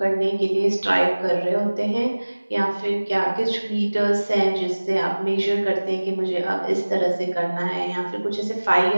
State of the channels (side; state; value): both; inverted; correlation -1.00